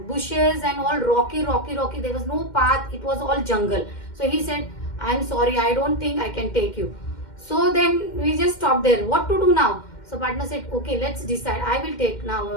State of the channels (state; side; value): late; right; 2.1 ms